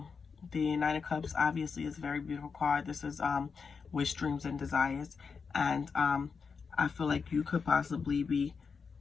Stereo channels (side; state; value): right; quieter; 5.5 dB